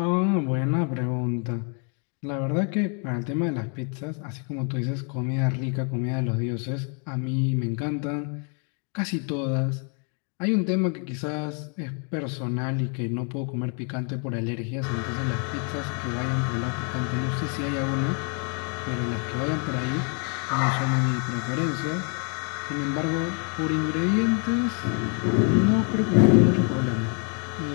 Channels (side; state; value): right; quieter; 39.7 dB